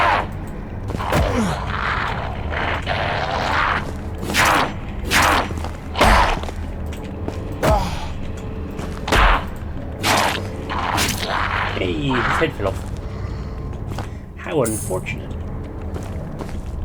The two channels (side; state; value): both; identical; correlation 1.00